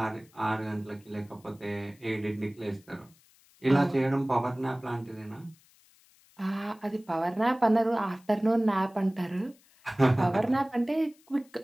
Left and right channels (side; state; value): left; noise; hiss, 30 dB below the sound